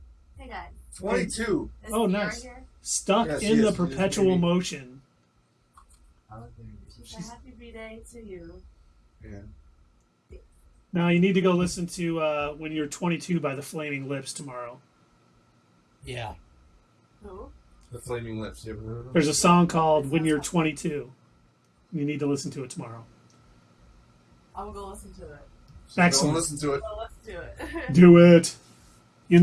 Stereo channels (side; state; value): both; identical; correlation 1.00